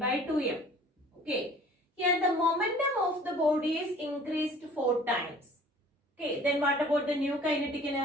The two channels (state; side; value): normal; both; correlation 0.50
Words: 2m. Okay, here the momentum of the body is increased 4 times. Okay, then what about the new kinetic